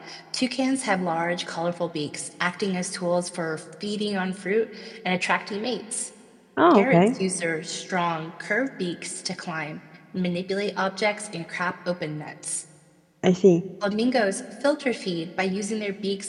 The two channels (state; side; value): identical; both; correlation 1.00